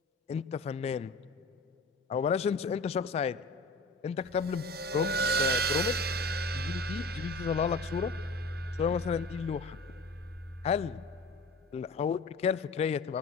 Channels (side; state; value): right; quieter; 3.1 dB